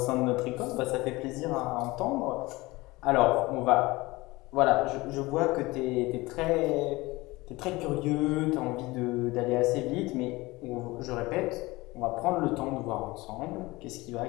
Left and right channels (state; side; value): quieter; right; 21.4 dB